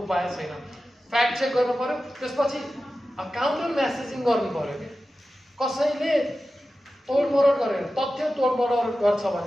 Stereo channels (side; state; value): both; normal; correlation 0.94